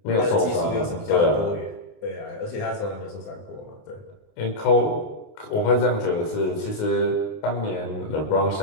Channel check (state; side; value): late; right; 19 ms